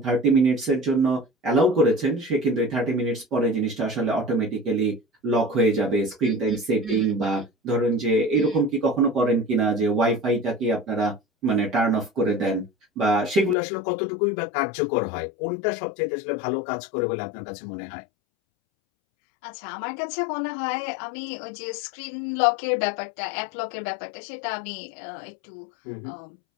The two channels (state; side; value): drops out; right; at 13.6 s